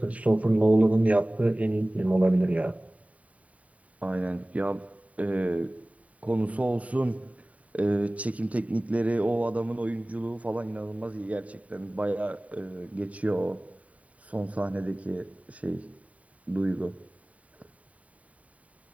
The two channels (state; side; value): late; left; 0.068 ms